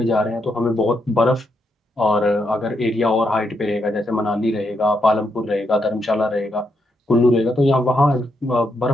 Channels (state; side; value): normal; both; correlation 0.80